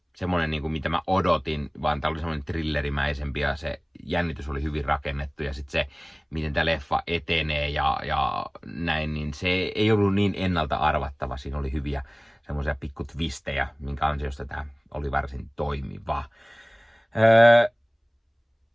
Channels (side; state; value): both; identical; correlation 1.00